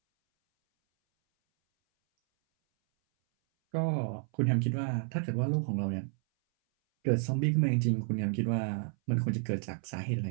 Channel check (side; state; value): left; silent; 57 dB below the other